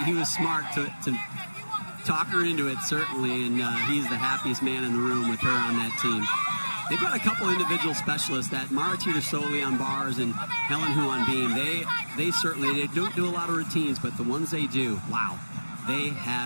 he was smart to talk her into it, certainly, and he's the happiest man in the room with her on that team. They've got a couple individual specialists, that Mara Teeter-Soley on bars and Helen Hu on beam. They certainly don't do a lot of routines, but the ones they do, wow, they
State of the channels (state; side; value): inverted; both; correlation -1.00